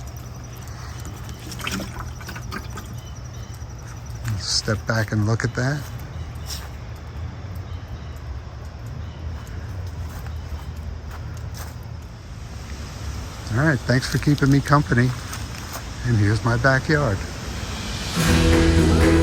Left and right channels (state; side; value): identical; both; correlation 1.00